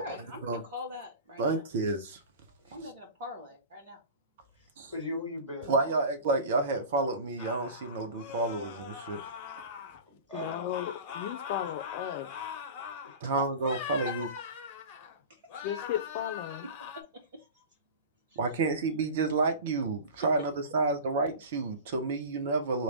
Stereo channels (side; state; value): both; inverted; correlation -0.33